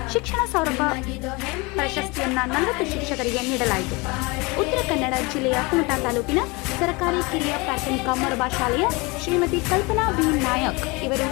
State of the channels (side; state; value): right; quieter; 26.3 dB